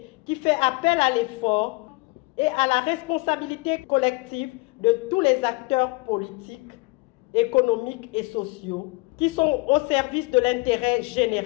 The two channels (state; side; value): quieter; right; 26.3 dB